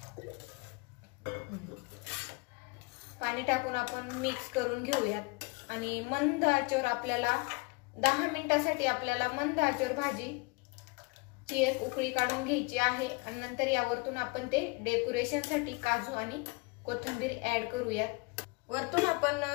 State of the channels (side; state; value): right; quieter; 29.1 dB